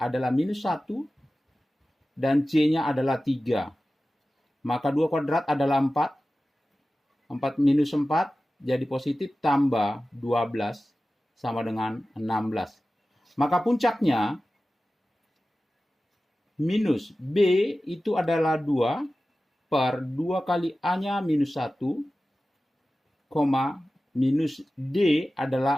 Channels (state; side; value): normal; both; correlation 0.95